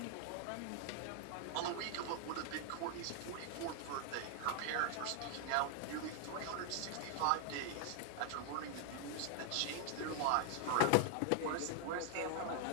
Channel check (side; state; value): both; different; correlation 0.00